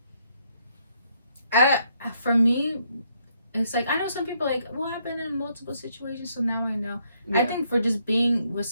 For me, it's like I know some people like, well, I've been in multiple situations, so now I know. Yeah. I think for just being with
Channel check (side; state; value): both; inverted; correlation -0.72